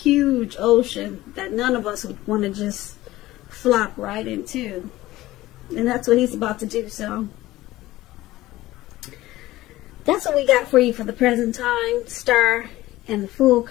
ocean that none of us would want to just flop right into, and that's what he's about to do. So that's what we got for you for the present time, Star and the Fool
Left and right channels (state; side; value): quieter; right; 17.0 dB